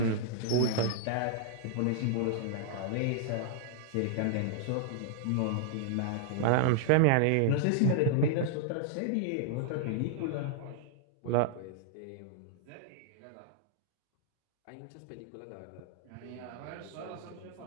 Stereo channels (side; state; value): both; different; correlation -0.01